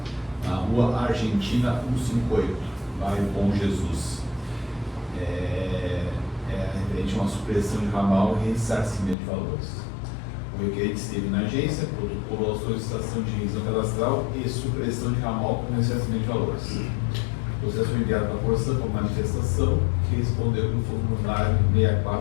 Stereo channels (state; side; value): drops out; right; at 9.2 s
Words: na rua Argentina 158, bairro Bom Jesus. Referente a uma supressão de ramal e ressarcimento de valores. O requerente esteve na agência, protocolou a solicitação de revisão cadastral e supressão de ramal com ressarcimento de valores. O processo foi enviado para a Corsã por manifestação, que respondeu no formulário